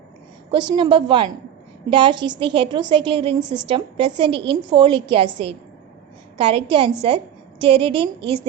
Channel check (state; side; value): quieter; left; 9.9 dB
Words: Question number 1. Dash is the heterocyclic ring system present in folic acid. Correct answer, pteridine is